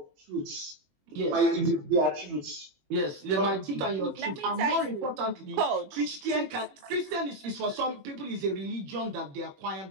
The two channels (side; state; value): left; late; 21 ms